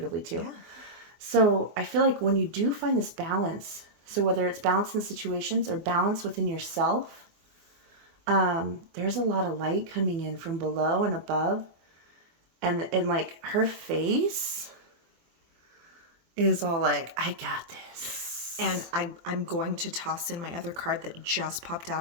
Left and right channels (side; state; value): left; late; 24 ms